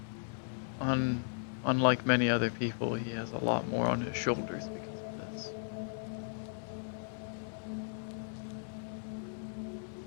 unlike many other people, he has a lot more on his shoulders because of this.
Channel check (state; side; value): silent; right; digital silence